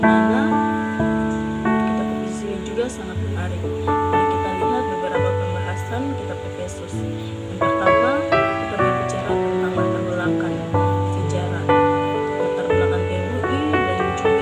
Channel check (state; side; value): identical; both; correlation 1.00